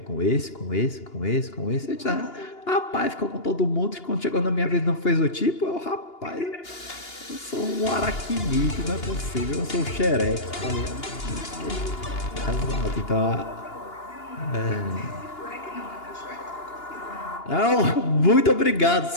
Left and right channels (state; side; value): late; right; 2.8 ms